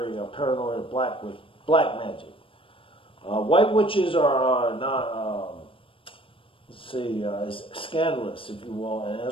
paranoid of black magic. White witches are not, let's see, scandalous, if you will, and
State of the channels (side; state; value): right; late; 0.26 ms